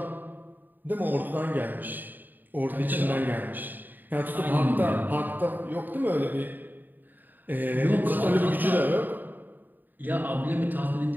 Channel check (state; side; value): late; left; 0.089 ms